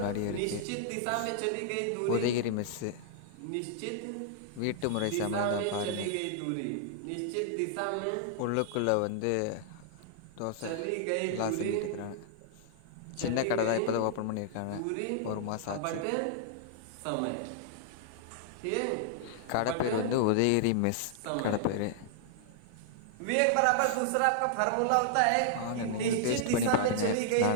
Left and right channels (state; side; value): different; both; correlation -0.01